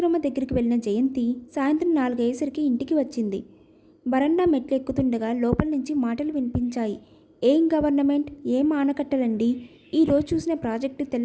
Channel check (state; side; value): identical; both; correlation 1.00